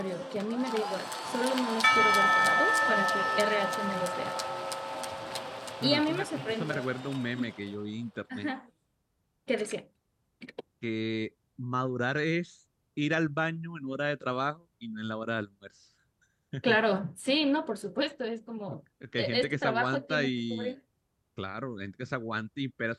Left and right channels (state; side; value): identical; both; correlation 1.00